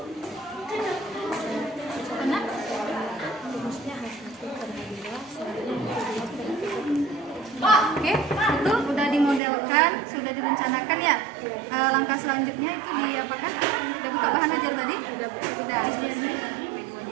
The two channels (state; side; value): drops out; left; at 9.4 s